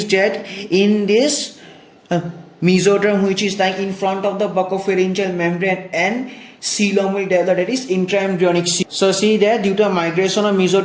that in this mesoderm which is lying in front of the buccopharyngeal membrane and coelom will develop, that is intraembryonic coelom. So see that due to migration of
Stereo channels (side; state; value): both; identical; correlation 1.00